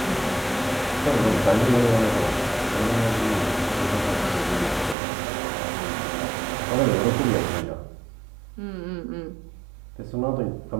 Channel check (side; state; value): left; drops out; at 5.0 s